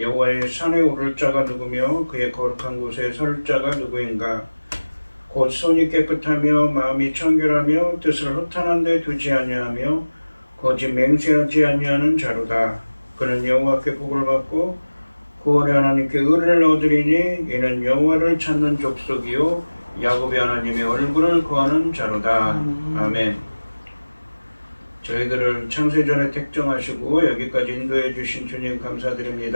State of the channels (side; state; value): both; inverted; correlation -1.00